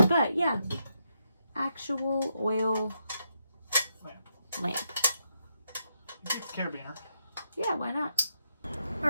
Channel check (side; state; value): both; inverted; correlation -0.81